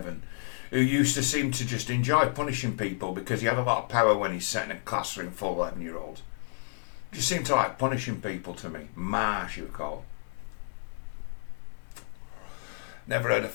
Who used to seem to just enjoy punishing people because he had a lot of power when he's sat in a classroom full of 11-year-olds. Just seemed to like punishing people to me. Marsh, you would call. Never heard a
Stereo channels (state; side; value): silent; right; digital silence